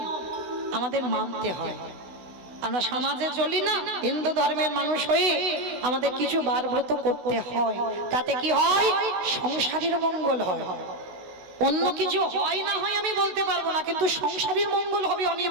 আমাদের মানতে হয়। আমরা সমাজে চলি না, হিন্দু ধর্মের মানুষ হয়ে আমাদের কিছু বার ব্রত করতে হয়। তাতে কি হয়? সংসারের মঙ্গল হয়। অন্য কিছু হয় না হয় আমি বলতে পারবো না, কিন্তু সংসারের মঙ্গল হবে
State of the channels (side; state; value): left; late; 16 ms